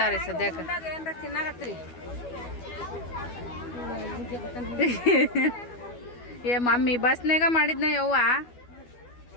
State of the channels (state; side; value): late; right; 12 ms